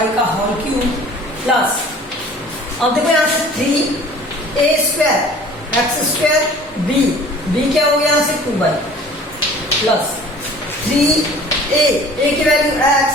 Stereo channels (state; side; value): normal; both; correlation 0.48